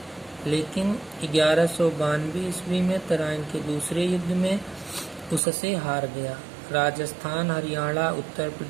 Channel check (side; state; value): left; drops out; at 5.4 s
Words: लेकिन 1192 ईस्वी में तराइन के दूसरे युद्ध में उससे हार गया। राजस्थान, हरियाणा, उत्तर